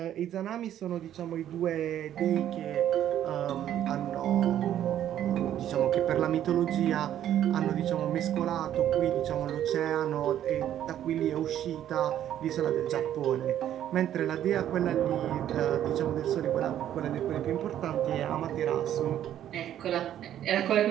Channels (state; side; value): quieter; left; 11.2 dB